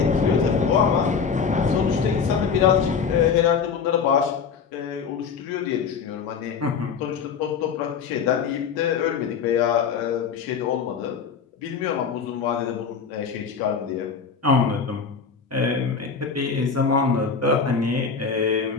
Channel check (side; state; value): right; quieter; 6.1 dB